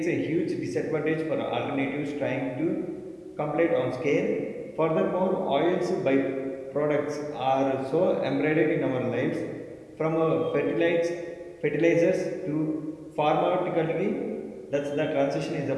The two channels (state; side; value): identical; both; correlation 1.00